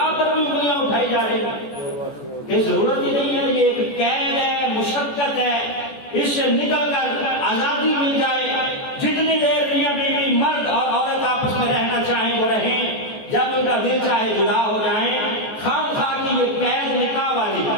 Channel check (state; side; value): late; right; 14 ms